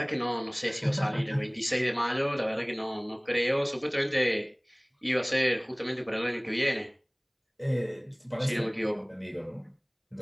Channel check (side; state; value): both; identical; correlation 1.00